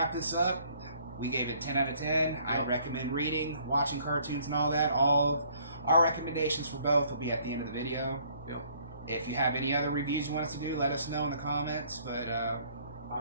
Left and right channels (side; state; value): both; inverted; correlation -0.61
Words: this up, we gave it 10 out of 10. I recommend reading, watching cartoons and all that. All of our recommendations for both will be at the end of the video. If you have any other reviews you want us to do, let us know in the comments. But